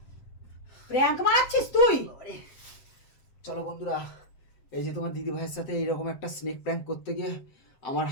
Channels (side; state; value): right; late; 7.7 ms